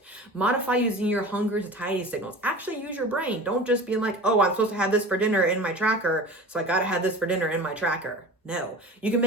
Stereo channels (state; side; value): normal; both; correlation 0.35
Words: Modify using your hunger satiety signals. Actually use your brain. Don't just be like, oh, I'm supposed to have this for dinner in my tracker, so I gotta have this for dinner in my tracker. No, you can